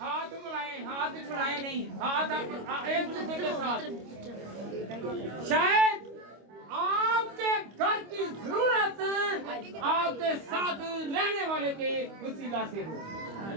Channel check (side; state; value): left; late; 25 ms